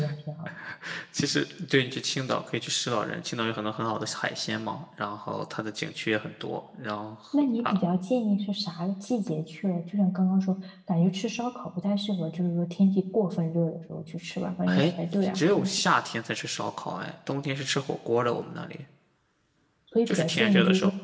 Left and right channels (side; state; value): both; identical; correlation 1.00